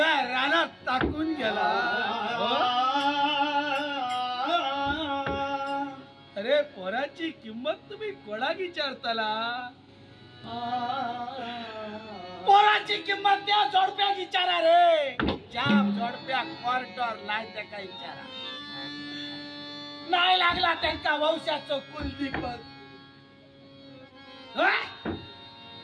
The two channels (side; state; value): both; identical; correlation 1.00